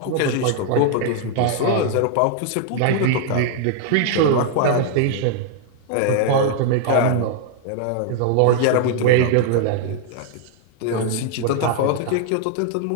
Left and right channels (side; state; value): both; different; correlation 0.00